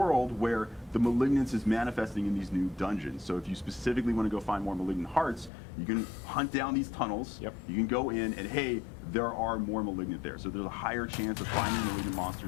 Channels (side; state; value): right; drops out; at 5.5 s